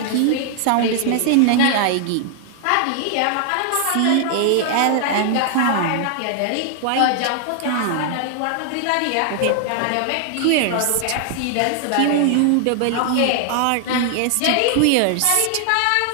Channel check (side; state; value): both; different; correlation 0.00